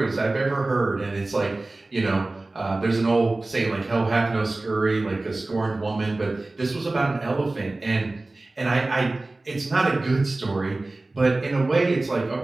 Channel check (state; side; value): quieter; left; 3.0 dB